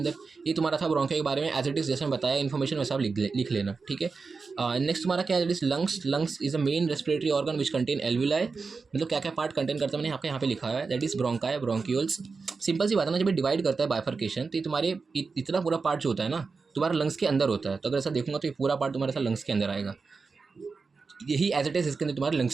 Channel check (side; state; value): left; quieter; 4.6 dB